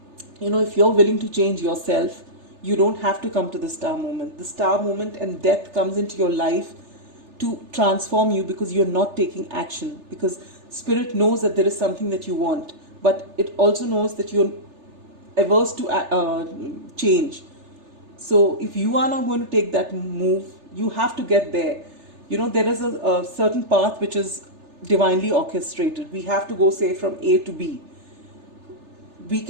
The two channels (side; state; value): left; late; 3.3 ms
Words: if you're willing to change yourself, you don't have to come to the star moment. The star moment and death comes into your life to transform you, because you're not taking action. Because Spirit knows that there is something that you want, but it also knows that you're averse to change. So if you are not going to take that move, you have to get there. There is a certain path which is divinely orchestrated. We have to go, say, from A to B. We